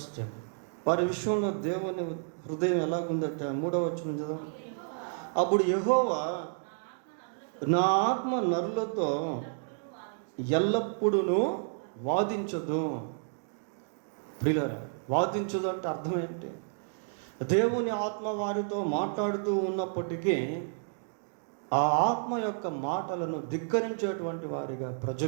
them, వారి విషయంలో దేవుని హృదయం ఎలాగుందట? 3వ వచనం చదువు. అప్పుడు యెహోవా, నా ఆత్మ నరులతో ఎల్లప్పుడూ వాదించదు. ప్రియులారా, వాదించదు అంటే అర్థం ఏంటి? దేవుని ఆత్మ వారితో మాట్లాడుతూ ఉన్నప్పటికీ ఆ ఆత్మ యొక్క మాటలను ధిక్కరించేటువంటి వారిగా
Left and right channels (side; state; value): left; silent; digital silence